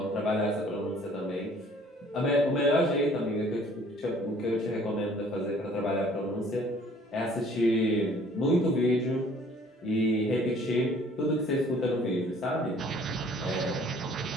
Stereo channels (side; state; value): both; normal; correlation 0.55